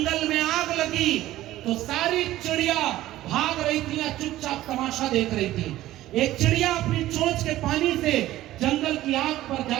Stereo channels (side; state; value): left; quieter; 15.1 dB